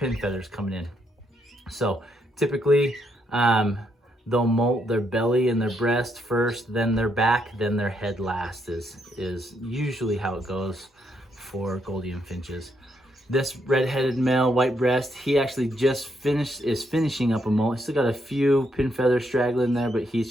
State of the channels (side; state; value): both; normal; correlation 0.76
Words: coming in. So typically, they'll molt their belly and their breast first, then their back, then their head last is usually how it goes for Gouldian finches. This red-headed male, white breast, he actually just is finishing up a molt. He's still got a few pin feathers straggling there, but